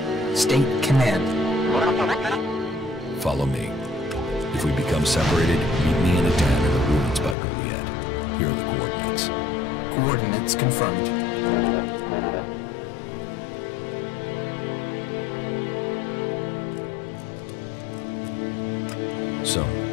State command. Follow me. If we become separated, meet me in a den in the ruins by Juliet. Here are the coordinates. Coordinates confirmed. So,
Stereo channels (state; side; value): drops out; right; at 7.4 s